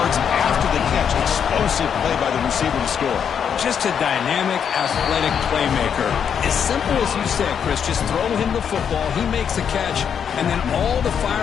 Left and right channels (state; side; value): quieter; right; 7.7 dB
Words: after the catch. Explosive play by the receiver to score. Just a dynamic, athletic playmaker. As simple as you said, Chris, just throw him the football, he makes a catch, and then all the